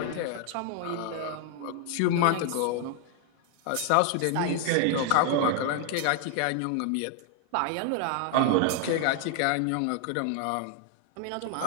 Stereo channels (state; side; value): different; both; correlation 0.00